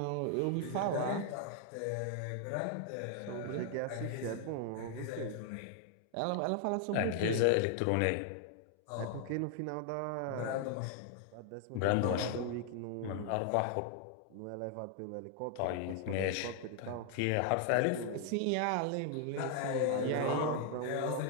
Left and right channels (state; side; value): different; both; correlation 0.00